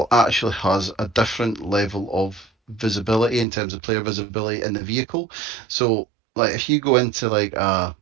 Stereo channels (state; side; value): drops out; left; at 3.5 s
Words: actually has a different level of visibility in terms of player visibility in the vehicle. So, like, if you go into like